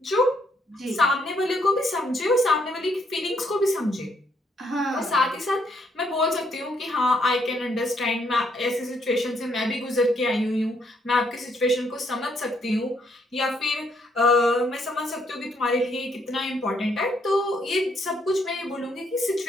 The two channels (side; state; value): both; normal; correlation 0.72